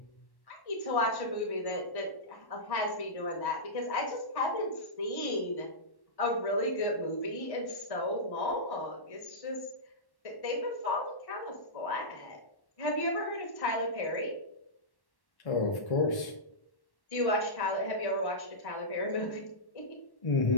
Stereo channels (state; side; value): late; right; 1.1 ms